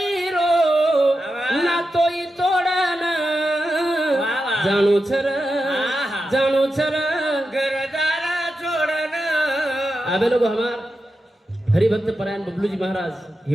रो ना तोई तोडन जाणू छर घरदार सोडन आबे लोग हमार हरिभक्त परायण बबलू जी महाराज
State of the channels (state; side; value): normal; both; correlation 0.89